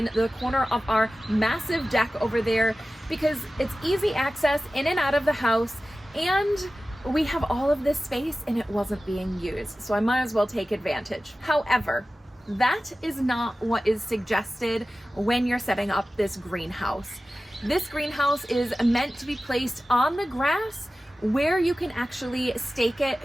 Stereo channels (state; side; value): normal; both; correlation 0.95